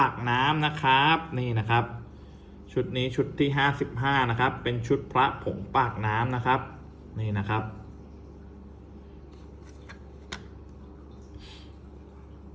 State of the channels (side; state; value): both; identical; correlation 1.00